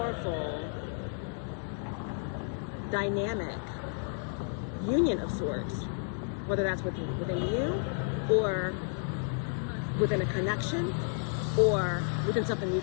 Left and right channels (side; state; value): right; silent; 57 dB below the other